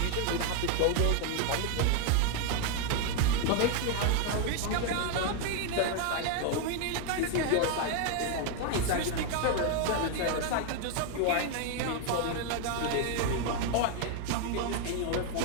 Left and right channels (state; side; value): different; both; correlation 0.00